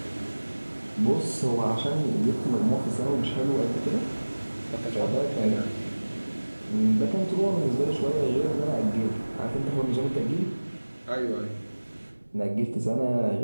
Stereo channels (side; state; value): both; inverted; correlation -1.00